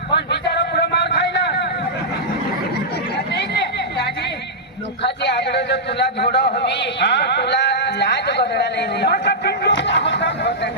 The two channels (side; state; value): both; normal; correlation -0.10